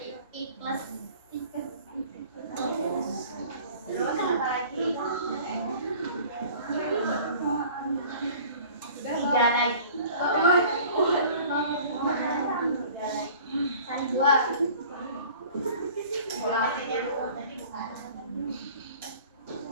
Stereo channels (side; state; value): both; inverted; correlation -0.47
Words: iklas. Terus apa lagi? Tiga lagi. Satu dua.